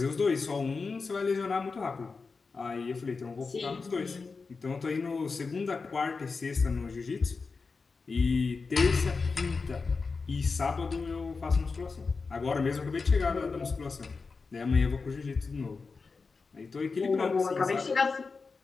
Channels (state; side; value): quieter; right; 4.5 dB